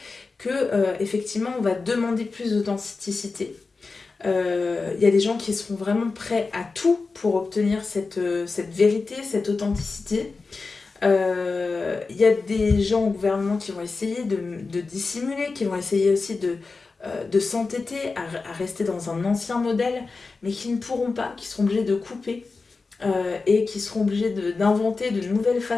que, effectivement, on va demander plus d'authenticité. Il y a des gens qui seront vraiment prêts à tout pour obtenir cette vérité, cette authenticité. Il y a des gens au gouvernement qui vont essayer de dissimuler, qui vont essayer aussi de s'entêter à rester dans un ancien modèle, mais qui ne pourront pas, qui seront obligés de couper et qui seront obligés d'inventer de nouvelles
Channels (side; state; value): right; quieter; 4.1 dB